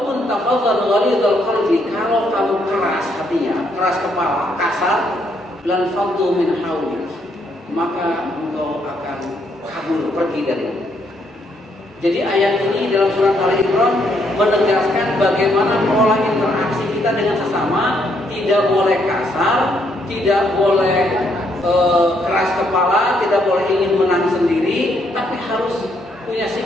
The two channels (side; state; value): both; normal; correlation 0.73